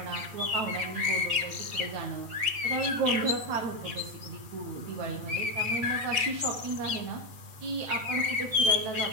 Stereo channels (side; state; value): left; late; 8.3 ms